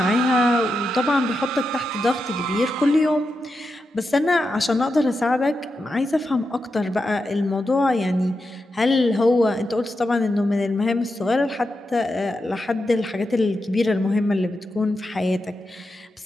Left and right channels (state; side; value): normal; both; correlation 0.88